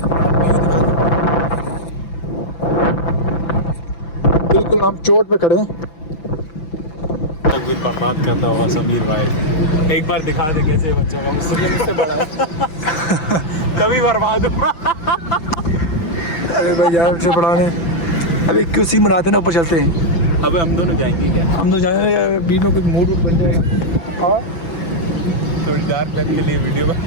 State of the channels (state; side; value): late; right; 5.9 ms